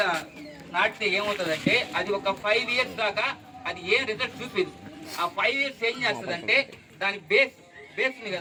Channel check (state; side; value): identical; both; correlation 1.00